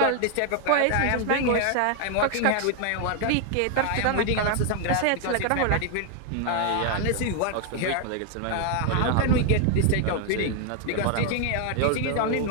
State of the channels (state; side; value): different; both; correlation 0.00